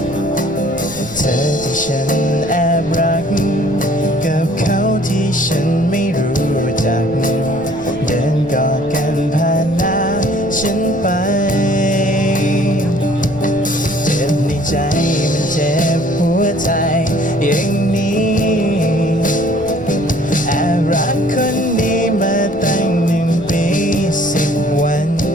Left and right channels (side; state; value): right; noise; rumble, 18 dB below the sound